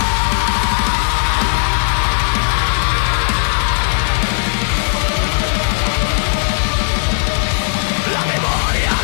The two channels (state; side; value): silent; right; 66 dB below the other